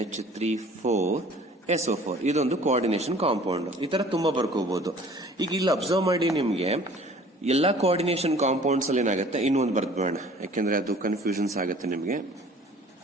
4 SO4. ಇದೊಂದು ಕೋಆರ್ಡಿನೇಷನ್ ಕಾಂಪೌಂಡ್. ಈ ತರ ತುಂಬಾ ಬರ್ಕೋಬಹುದು. ಈಗ ಇಲ್ಲಿ ಅಬ್ಸರ್ವ್ ಮಾಡಿ, ನಿಮ್ಗೆ ಎಲ್ಲಾ ಕೋಆರ್ಡಿನೇಷನ್ ಕಾಂಪೌಂಡ್ಸ್ ಅಲ್ಲಿ ಏನಾಗುತ್ತೆ, ಇನ್ನೊಂದು ಬರ್ದ್ಬೇಡ, ಯಾಕೆಂದ್ರೆ ಅದು ಕನ್ಫ್ಯೂಷನ್ಸ್ ಆಗುತ್ತೆ ನಿಮ್ಗೆ.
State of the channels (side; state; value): both; normal; correlation 0.50